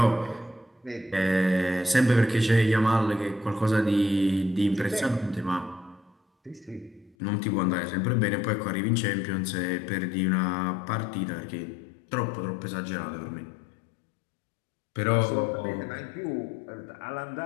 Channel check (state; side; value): drops out; right; at 7.2 s